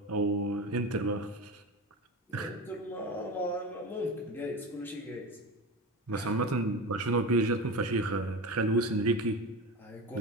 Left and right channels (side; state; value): both; normal; correlation 0.26